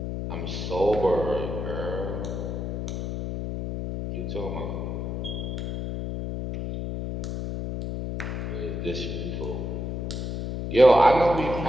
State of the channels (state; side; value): noise; left; hum, 4 dB below the sound